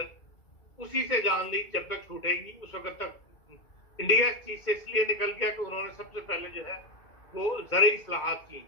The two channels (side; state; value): right; late; 2.3 ms